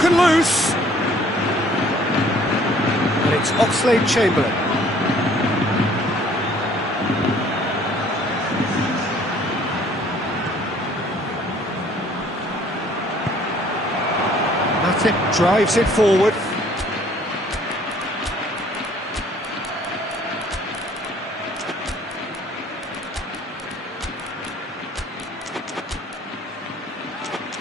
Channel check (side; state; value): both; normal; correlation 0.57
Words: loose. And it's Oxlade-Chamberlain. Matip drives it forward.